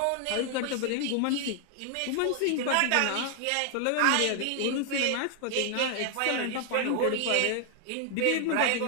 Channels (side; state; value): both; different; correlation 0.00